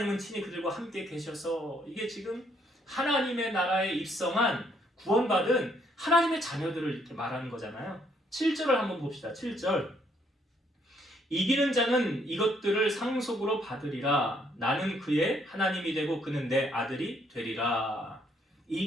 친히 그들과 함께 계셔서, 이게 지금 하나님의 나라에 입성한 구원받은 하나님의 자녀들을 이렇게 말하는 거잖아요. 7절을 한번 봅시다. 7절. 이기는 자는 이것들을 상속으로 받으리라. 나는 그의 하나님이 되고 그는 내 아들이 되리라.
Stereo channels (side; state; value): both; normal; correlation 0.69